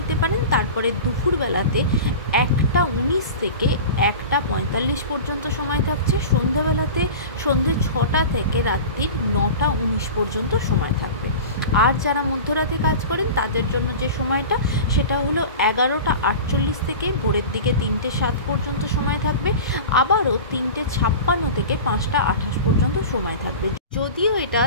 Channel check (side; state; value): both; inverted; correlation -0.33